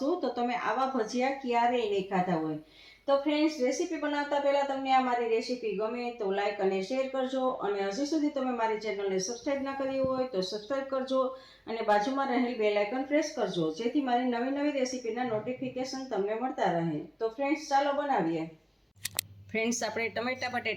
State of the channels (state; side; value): identical; both; correlation 1.00